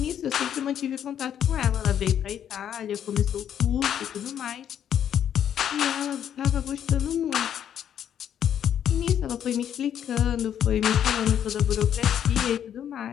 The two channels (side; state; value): right; quieter; 9.5 dB